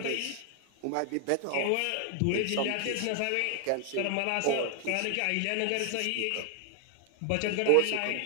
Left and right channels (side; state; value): both; different; correlation 0.00